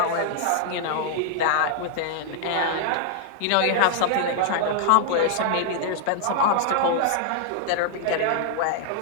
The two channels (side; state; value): both; different; correlation 0.00